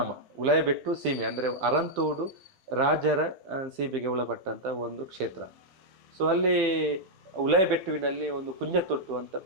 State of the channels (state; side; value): late; left; 12 ms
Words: ಉಲಾಯಿಬೆಟ್ಟು ಸೀಮೆ ಅಂದರೆ ಅರಂತೋಡು ರಾಜರ ಸೀಮೆಗೆ ಒಳಪಟ್ಟಂತ ಒಂದು ಕ್ಷೇತ್ರ. ಸೊ ಅಲ್ಲಿ ಉಲಾಯಿಬೆಟ್ಟುವಿನಲ್ಲಿ ಒಂದು ಕುಂಜತೊಟ್ಟು ಅಂತ